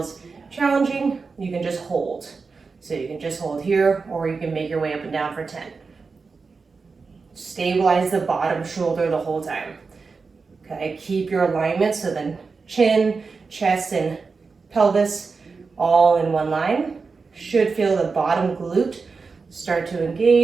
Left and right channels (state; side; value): quieter; left; 4.6 dB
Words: challenging, you can just hold. So you can just hold here, or you can make your way up and down for 10. Stabilize the bottom shoulder the whole time. Okay, keep your alignment, so then chin, chest, and pelvis all in one line. Should feel the bottom glute start to